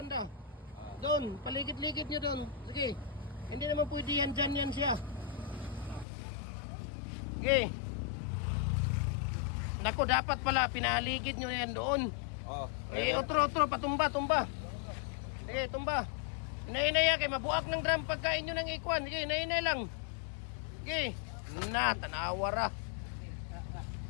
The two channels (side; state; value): right; drops out; at 6.1 s